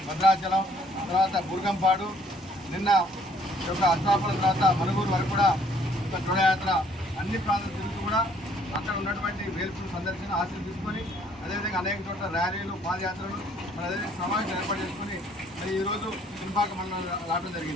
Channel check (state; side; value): normal; both; correlation 0.62